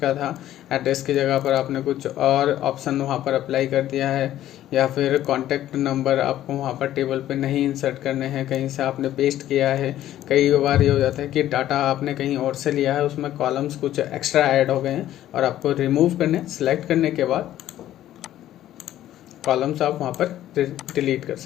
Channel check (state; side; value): quieter; right; 12.9 dB